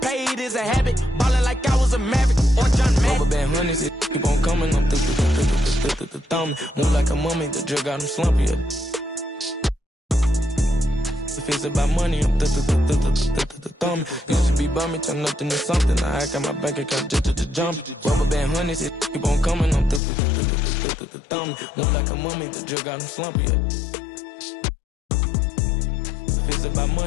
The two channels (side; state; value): right; drops out; at 20.0 s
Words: is a habit. Ballin' like I was a Maverick or John Madden. Rubber band honeys, it keep on coming. I'm thumbing. Move like a mummy, the drug got him slumpy. If it's about money, I'm thumbing. Used to be bumming, turn nothing into something. I got my bank account just to jump. Rubber band honeys, it keep on coming. I'm thumbing. Move like a mummy, the drug got him slumpy. If it's about